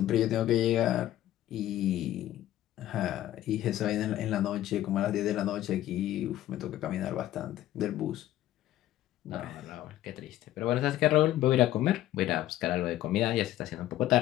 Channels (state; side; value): quieter; right; 13.7 dB